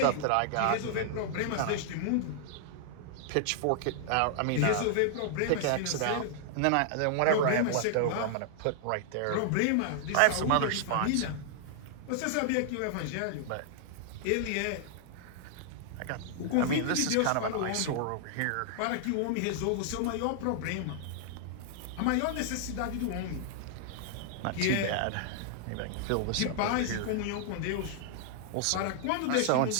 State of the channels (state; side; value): different; both; correlation -0.01